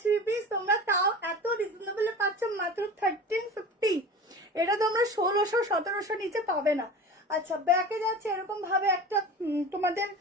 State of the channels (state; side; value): normal; both; correlation 0.35